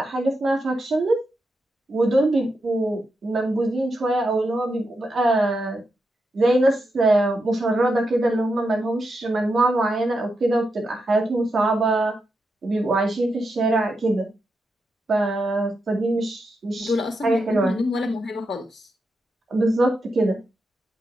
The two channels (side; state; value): both; normal; correlation 0.85